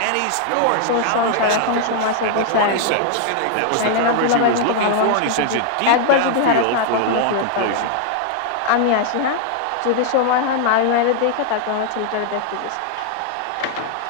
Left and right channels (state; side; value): different; both; correlation 0.00